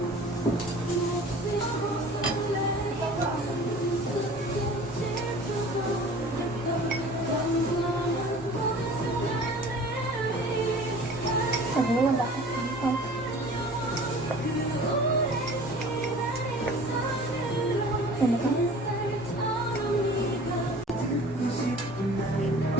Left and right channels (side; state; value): both; normal; correlation 0.44